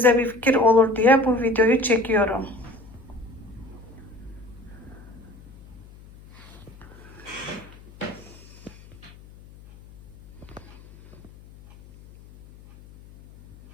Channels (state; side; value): noise; left; hum, 21 dB below the sound